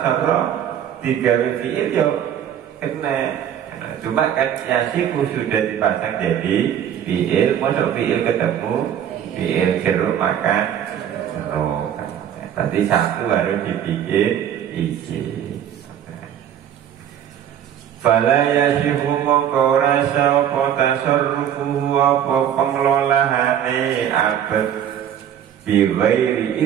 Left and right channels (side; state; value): left; quieter; 9.7 dB